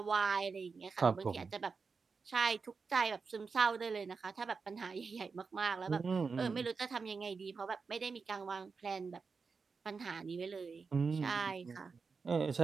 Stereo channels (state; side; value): quieter; left; 4.9 dB